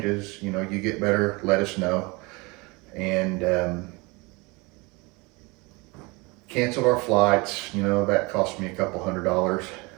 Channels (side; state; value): left; quieter; 26.2 dB